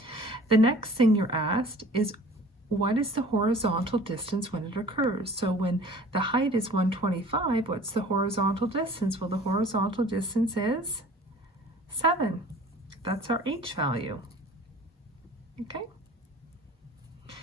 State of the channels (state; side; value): normal; both; correlation 0.47